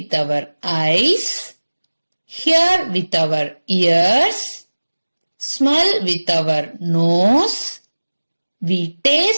our eyes, hear with our ears, smell with our nose, we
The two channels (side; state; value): both; inverted; correlation -1.00